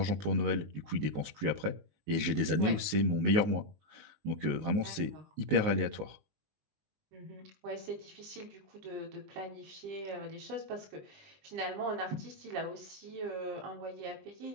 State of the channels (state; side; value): late; left; 19 ms